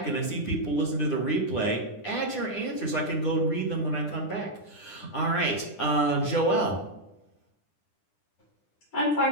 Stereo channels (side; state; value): right; late; 9.9 ms